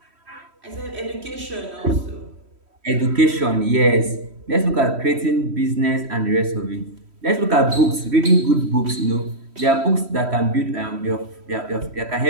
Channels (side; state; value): left; late; 3.1 ms